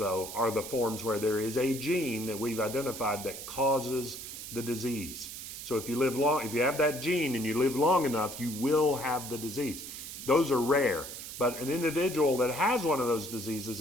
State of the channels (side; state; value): right; noise; hiss, 10 dB below the sound